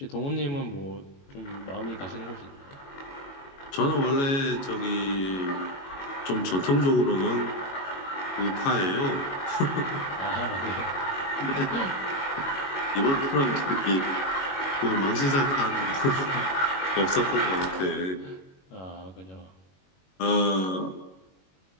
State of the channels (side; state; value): right; late; 22 ms